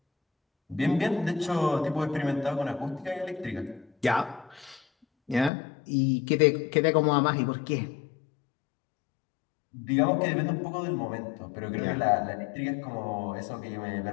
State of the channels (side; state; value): right; drops out; at 5.5 s